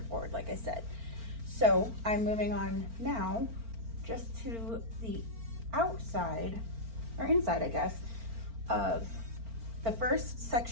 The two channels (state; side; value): late; left; 4.4 ms